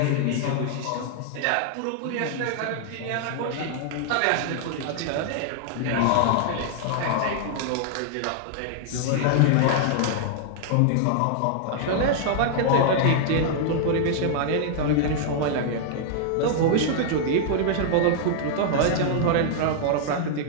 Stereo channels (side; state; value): both; different; correlation -0.01